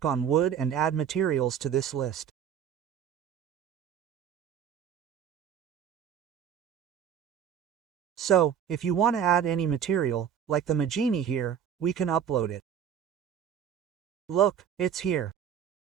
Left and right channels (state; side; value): quieter; left; 8.7 dB